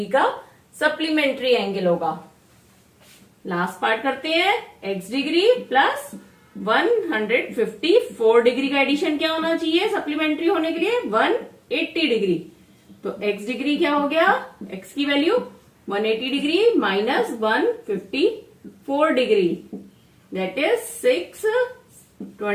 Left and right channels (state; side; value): identical; both; correlation 1.00